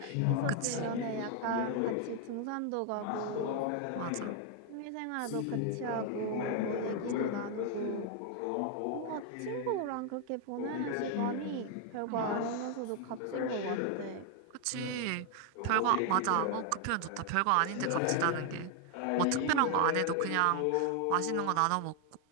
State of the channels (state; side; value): different; both; correlation 0.00